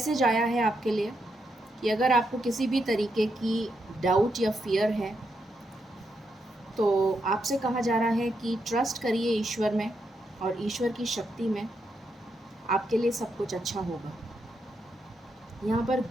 आया है आपके लिए कि अगर आपको किसी भी तरीके की डाउट या फियर है, तो आपसे कहा जा रहा है कि ट्रस्ट करिए ईश्वर में, और ईश्वर की शक्ति में। आपके लिए सब कुछ अच्छा होगा। यहाँ पर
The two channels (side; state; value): both; normal; correlation 0.82